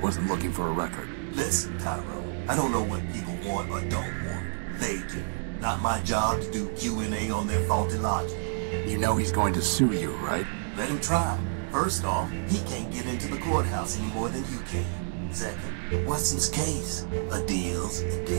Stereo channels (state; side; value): silent; left; digital silence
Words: looking for a record. Listen, Tyro, I don't know what people want or don't want. They do. Not my job to do Q&A on their faulty logic. You know he's going to sue you, right? Let him try. First off, he can't get into the courthouse any more than you can. Second, Watson's case. A deal's a